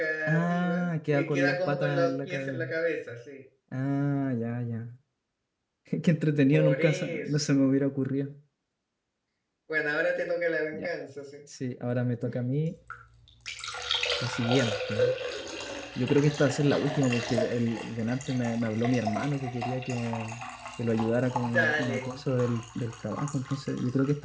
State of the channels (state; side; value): identical; both; correlation 1.00